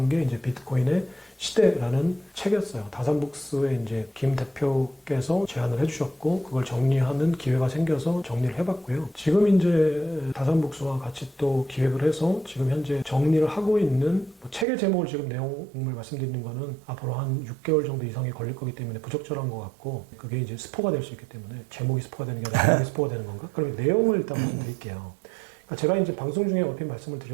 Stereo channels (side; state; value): left; drops out; at 14.7 s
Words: 게 이제 비트코인의 시대라는 책이었어요. 다산북스의 이제 김 대표께서 제안을 해주셨고 그걸 정리하는 기회가 생겨서 정리를 해봤고요. 지금 이제 다산북스와 같이 또 기획을 해서 지금 현재 정리를 하고 있는 뭐 책의 제목을 지금 내용을 말씀드리는 거는 앞으로 한 6개월 정도 이상이 걸릴 거기 때문에 부적절한 것 같고 그게 이제 스포가 될 수 있기 때문에 제목이 스포가 되는 게 아니라 내용이 스포가 되는 건가? 그럼 내용을 일단 말씀드릴게요. 그러니까 제가 이제 방송 중에 얼핏 말씀을